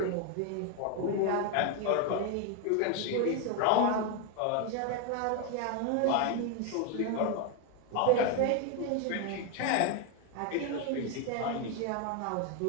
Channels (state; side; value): different; both; correlation 0.01